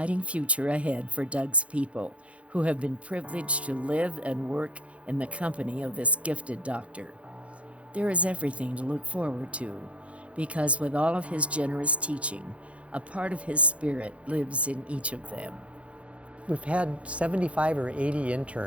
future ahead for Doug's people, who have been privileged to live and work in the company of this gifted doctor. There is everything to look forward to, because with all of his generous teaching, a part of his spirit lives in each of them. We've had 75 or 80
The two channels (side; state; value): left; late; 0.063 ms